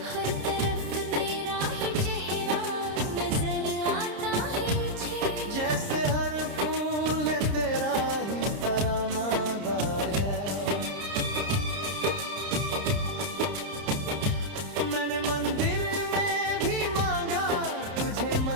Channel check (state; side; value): late; left; 30 ms